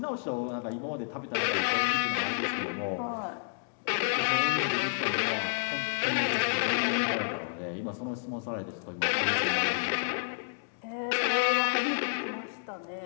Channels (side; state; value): right; silent; digital silence